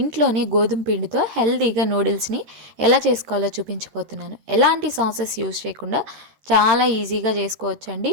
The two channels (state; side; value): late; left; 13 ms